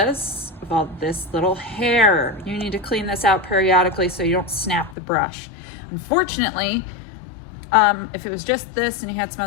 of all this little hair. You need to clean this out periodically so you don't snap the brush. Unfortunately, if it was just this and you had some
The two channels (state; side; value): drops out; right; at 5.0 s